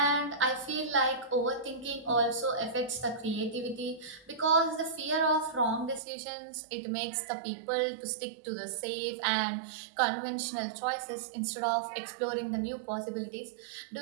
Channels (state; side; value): drops out; left; at 6.0 s